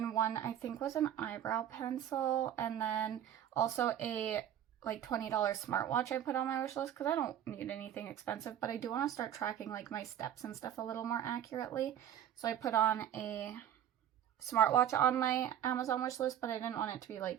one I think was an eyebrow pencil, and then also a like $20 smartwatch I put on my wish list because I don't need anything expensive, but I do want to start tracking like my steps and stuff a little more accurately. So I put on a smartwatch on my Amazon wish list, but I didn't want it to be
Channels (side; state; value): left; quieter; 10.4 dB